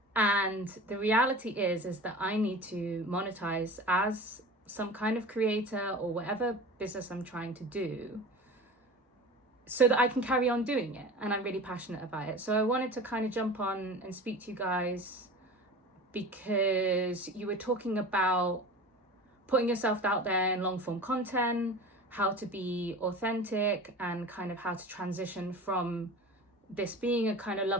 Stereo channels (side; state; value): both; normal; correlation 0.35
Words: And the reality is that I need to monetize as some kind of creator or whatever business I'm trying to do, so that I can carry on doing it. And I'm really passionate about it. So I wanted to kind of jump on and speak to you guys, because you were talking about putting yourself out there in long form content, how to be authentic, and kind of how to transition from this being a kind of